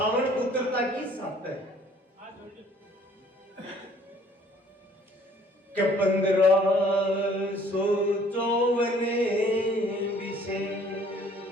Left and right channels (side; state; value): both; normal; correlation 0.57